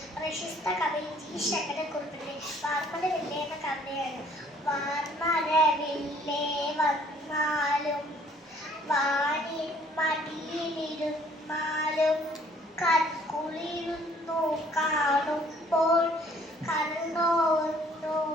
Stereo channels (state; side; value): normal; both; correlation 0.59